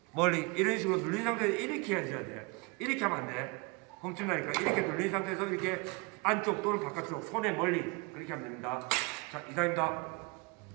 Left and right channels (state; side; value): quieter; left; 29.0 dB